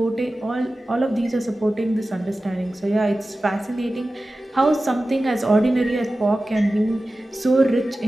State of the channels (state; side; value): normal; both; correlation 0.95